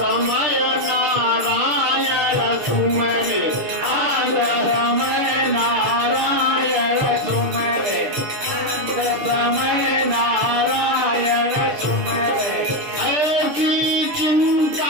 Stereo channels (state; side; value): late; left; 6.7 ms